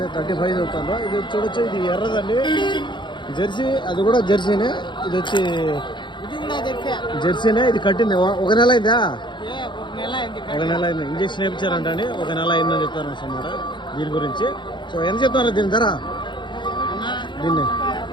35 చెప్తాను. ఇది చూడొచ్చు, ఇది ఎర్రదండి జెర్సీ. అది కూడా జెర్సీనే. ఇది వచ్చి జెర్సీనే. ఇది కట్టింది ఒక నెల అయిందా? ఒక నెల అయింది. ఇంజక్షన్ వేయించారంట అండి. ఒక నెల అయిందని చెప్తారు అన్నమాట దీని గురించి. సో ఎంత చెప్తారు దీని ధర? దీన్ని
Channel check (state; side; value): late; right; 0.23 ms